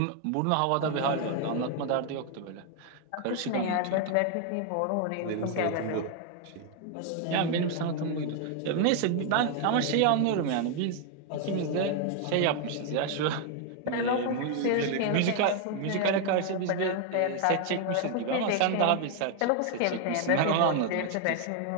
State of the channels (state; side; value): different; both; correlation 0.00